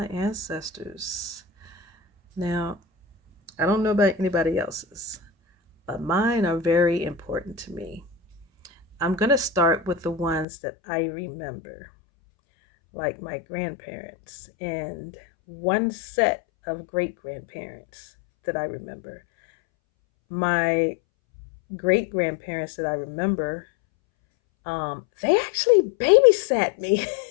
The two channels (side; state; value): right; drops out; at 10.5 s